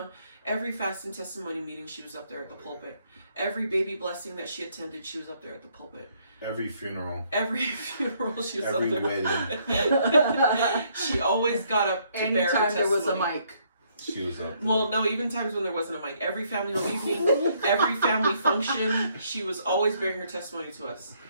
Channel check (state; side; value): inverted; both; correlation -0.69